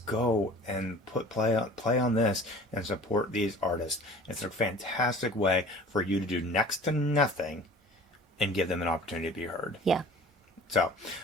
go and play on this and support these artists. It's a fantastic way for you to do next to nothing and give them an opportunity to be heard. Yeah. So,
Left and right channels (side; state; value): both; normal; correlation 0.45